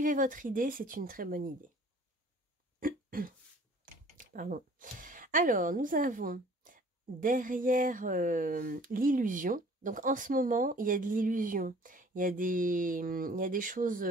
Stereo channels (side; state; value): both; normal; correlation 0.52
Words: votre idée, c'est une très bonne idée. Pardon. Alors, nous avons derrière l'illusion. Donc, en ce moment, il y a de l'illusion. Il y a des